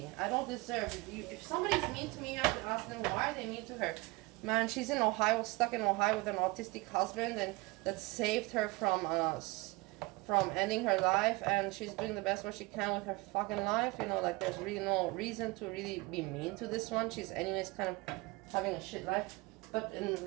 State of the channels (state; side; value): quieter; left; 23.9 dB